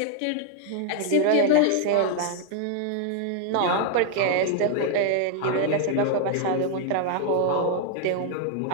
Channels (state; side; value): different; both; correlation 0.00